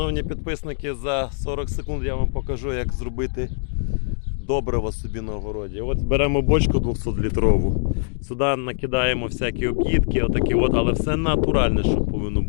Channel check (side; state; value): right; silent; digital silence